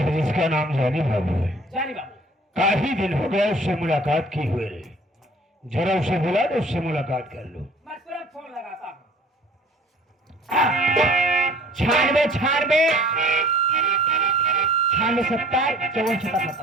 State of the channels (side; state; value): both; normal; correlation 0.51